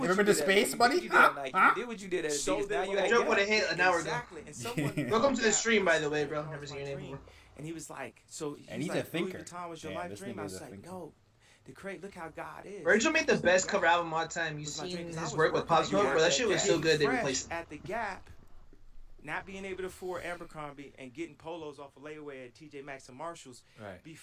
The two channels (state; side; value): identical; both; correlation 1.00